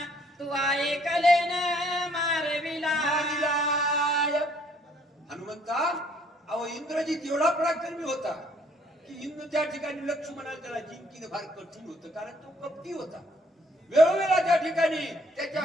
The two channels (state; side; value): normal; both; correlation 0.64